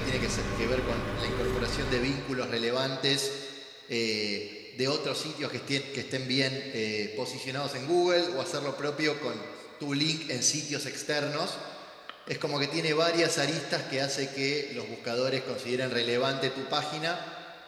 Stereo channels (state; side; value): identical; both; correlation 1.00